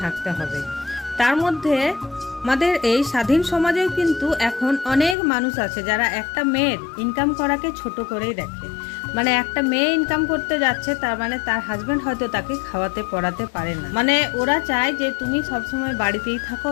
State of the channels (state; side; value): drops out; right; at 5.2 s